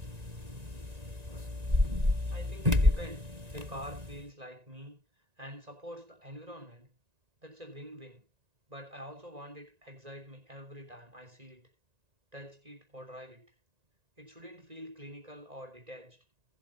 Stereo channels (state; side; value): late; left; 1.9 ms